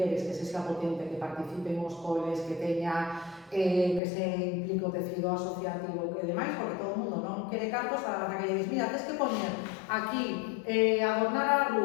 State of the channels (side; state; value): right; drops out; at 4.0 s